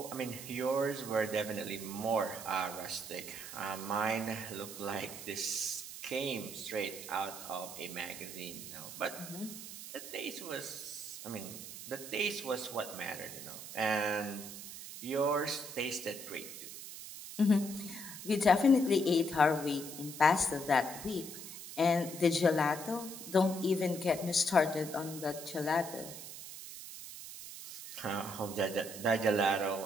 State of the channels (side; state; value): right; noise; hiss, 11 dB below the sound